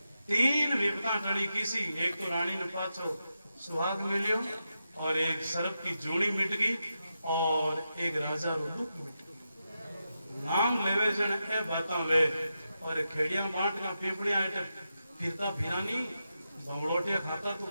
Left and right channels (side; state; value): both; inverted; correlation -0.88